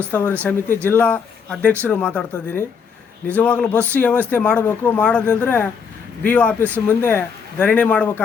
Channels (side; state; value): right; quieter; 6.2 dB